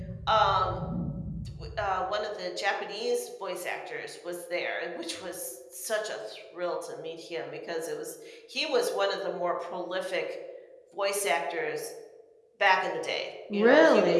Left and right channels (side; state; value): both; identical; correlation 1.00